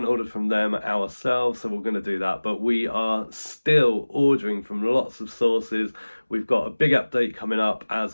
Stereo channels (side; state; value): both; inverted; correlation -1.00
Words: ordered from them ourselves, so we're going to do that. But we are still ordering from lots of sources. We've got a big update coming up,